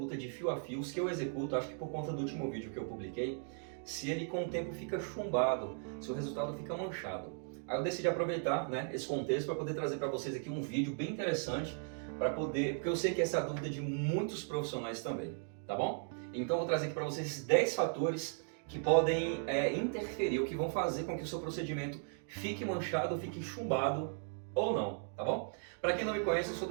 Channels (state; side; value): silent; left; 53 dB below the other